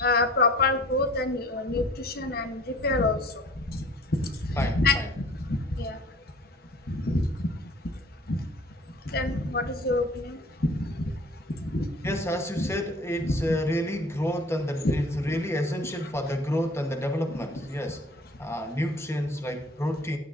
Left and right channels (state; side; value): normal; both; correlation 0.49